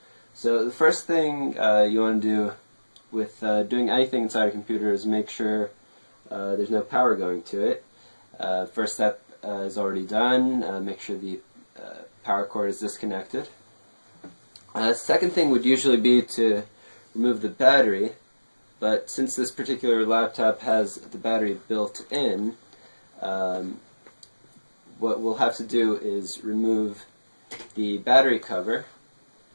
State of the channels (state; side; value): inverted; both; correlation -1.00